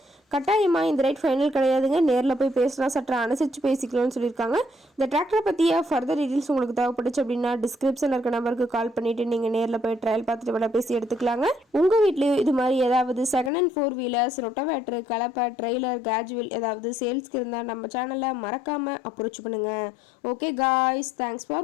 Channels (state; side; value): drops out; right; at 13.5 s